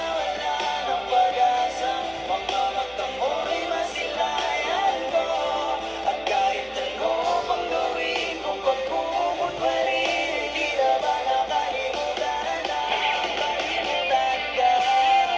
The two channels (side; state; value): both; identical; correlation 1.00